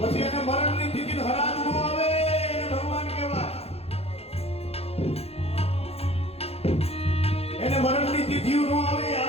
એને મરણની તિથિ હરાજ નો આવે, એને ભગવાન કહેવાય. એને મરણની તિથિ નો આવે,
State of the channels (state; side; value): late; right; 0.29 ms